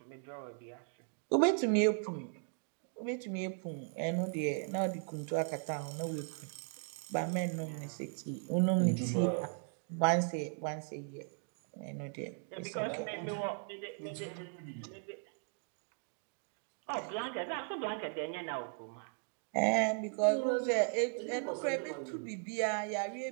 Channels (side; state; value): left; silent; 53 dB below the other